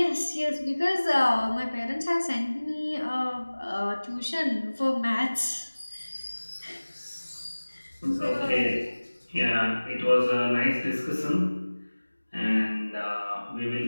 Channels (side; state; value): both; inverted; correlation -1.00